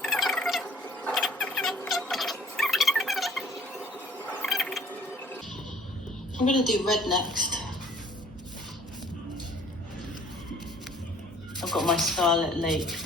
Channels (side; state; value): both; normal; correlation 0.54